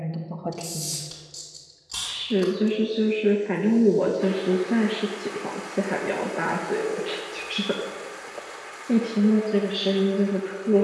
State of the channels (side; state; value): both; identical; correlation 1.00